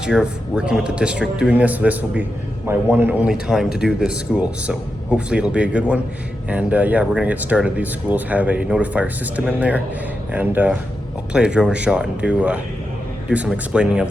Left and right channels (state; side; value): normal; both; correlation 0.88